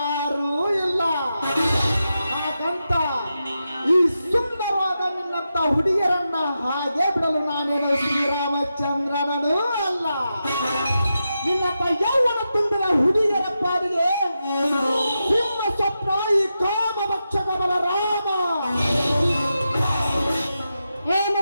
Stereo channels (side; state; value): both; inverted; correlation -0.88